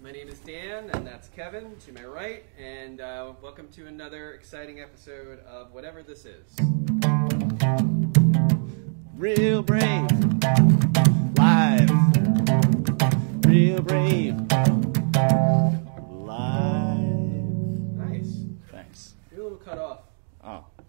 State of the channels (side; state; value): left; silent; digital silence